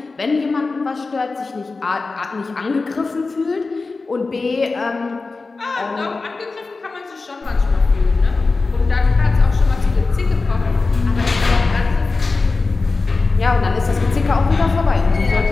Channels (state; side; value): quieter; right; 3.9 dB